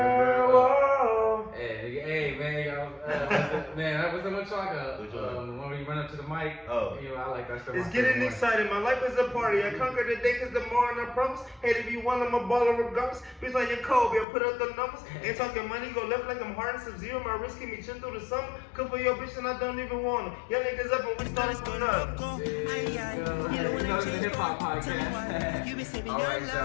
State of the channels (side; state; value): right; drops out; at 14.2 s